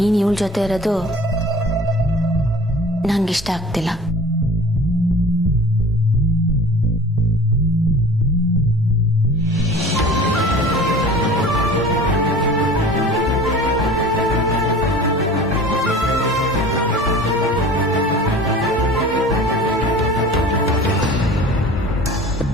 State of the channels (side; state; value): both; normal; correlation 0.42